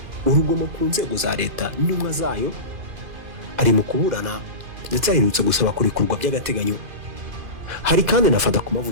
urugomo ku nzego za leta n'intumwa zayo, ari mu kuburana ndetse aherutse gusaba kurekurwa by'agateganyo. Hari kandi nafata ku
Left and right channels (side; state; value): left; late; 2.5 ms